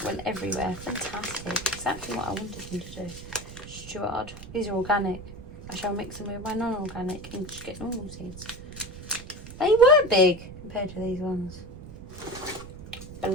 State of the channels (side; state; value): right; noise; rumble, 14 dB below the sound